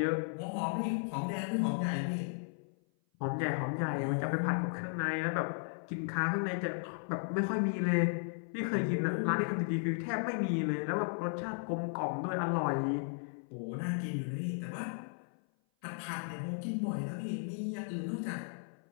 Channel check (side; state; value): right; silent; 54 dB below the other